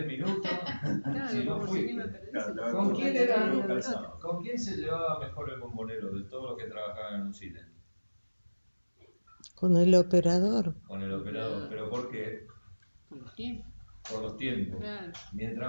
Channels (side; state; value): both; inverted; correlation -1.00